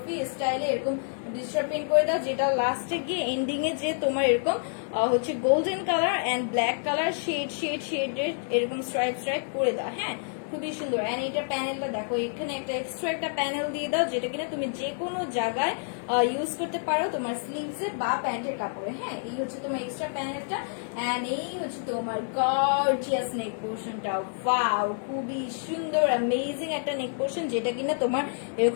স্টাইলে এরকম ডিজিটাল পেইন্ট করে দাও, যেটা লাস্টে গিয়ে এন্ডিং এ যে তোমার এরকম হচ্ছে golden colour and black colour shade এরকম স্ট্রাইপ করে দাও। হ্যাঁ, খুবই সুন্দর। এন্ড এটা প্যানেলটা দেখো, এখানে একটা এক্সট্রা একটা প্যানেল দিয়ে দাও, যেটা কিনা তুমি যে কোনো জায়গায় ইউজ করতে পারো তোমার স্লিভসে বা প্যান্টের কাপড়ে। হ্যাঁ, এই হচ্ছে তোমার এক্সট্রা প্যানেলটা। এন্ড এই হচ্ছে তোমার গর্জিয়াস নেক পোর্শনটা। ওয়াও, খুবই সুন্দর অ্যামেজিং একটা নেক পোর্শন, যেটা কিনা তোমার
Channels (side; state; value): right; silent; digital silence